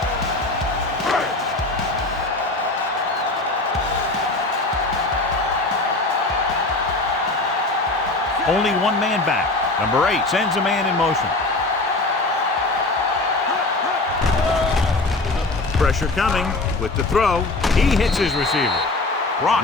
Only one man back. Number 8 sends a man in motion. Pressure coming with the throw. He hits his receiver.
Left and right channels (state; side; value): quieter; right; 3.1 dB